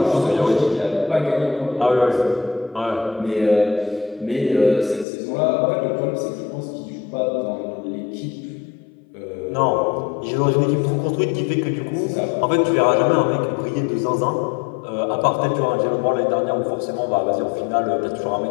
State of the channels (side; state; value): right; drops out; at 5.1 s